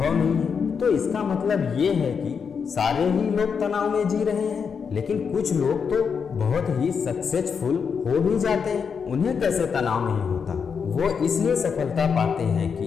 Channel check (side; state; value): right; quieter; 6.3 dB